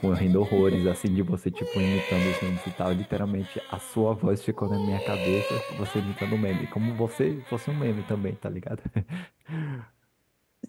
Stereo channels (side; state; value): both; identical; correlation 1.00